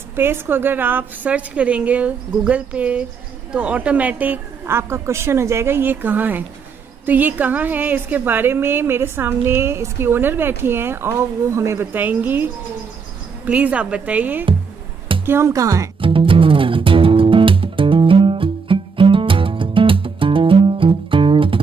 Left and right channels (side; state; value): left; quieter; 5.5 dB